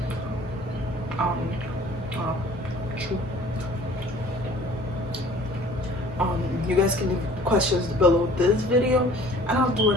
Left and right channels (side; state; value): both; normal; correlation 0.50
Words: You guys can leave questions below this video, and I'll do